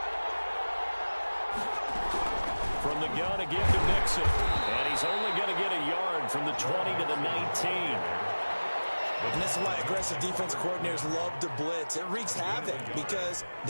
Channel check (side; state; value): both; inverted; correlation -1.00